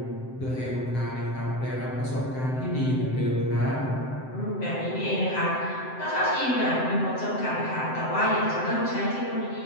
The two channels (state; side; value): late; right; 7.7 ms